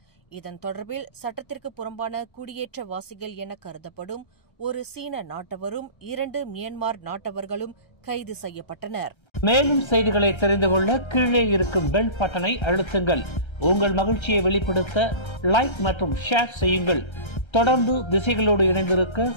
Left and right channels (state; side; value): late; right; 1.3 ms